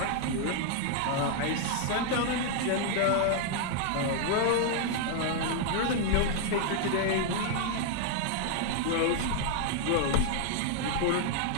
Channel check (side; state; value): both; different; correlation 0.00